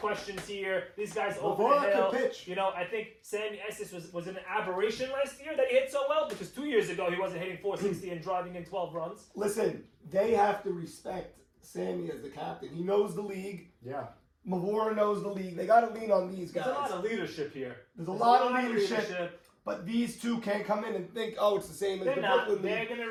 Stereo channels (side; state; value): both; identical; correlation 1.00